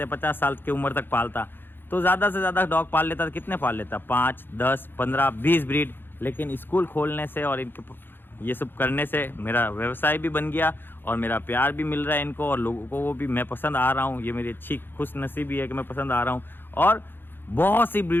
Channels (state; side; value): late; right; 0.10 ms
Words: हैं 50 साल की उम्र तक पालता, तो ज़्यादा से ज़्यादा डॉग पाल लेता। कितने पाल लेता? 5, 10, 15, 20 ब्रीड। लेकिन स्कूल खोलने से और इनके ये सब करने से मेरा व्यवसाय भी बन गया और मेरा प्यार भी मिल रहा है इनको, और लोगों को वो भी मैं पसंद आ रहा हूँ। ये मेरी अच्छी खुश नसीबी है कि मैं पसंद आ रहा हूँ, और बहुत सी